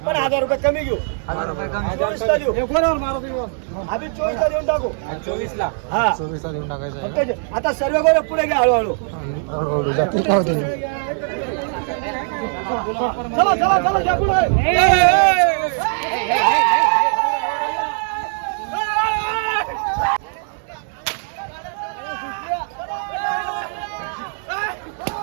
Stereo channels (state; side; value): silent; left; 65 dB below the other